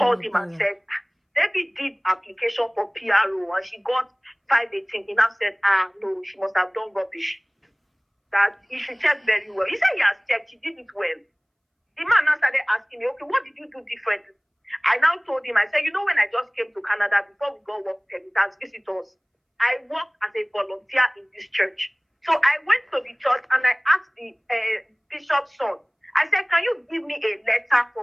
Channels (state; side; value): identical; both; correlation 1.00